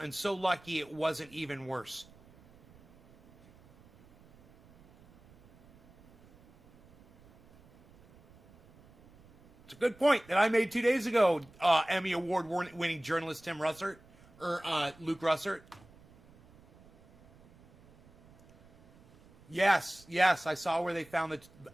so lucky it wasn't even worse. Good point that I made 2 days ago, Emmy Award-winning journalist Tim Russert, or Luke Russert. Yes, I saw where they found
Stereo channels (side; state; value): right; noise; rumble, 26 dB below the sound